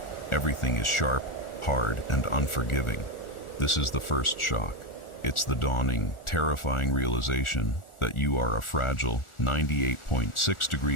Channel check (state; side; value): late; right; 1.4 ms